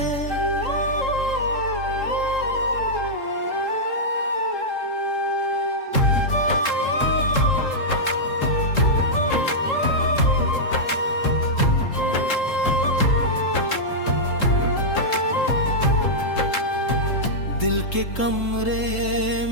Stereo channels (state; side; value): late; right; 3.7 ms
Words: दिल के कमरे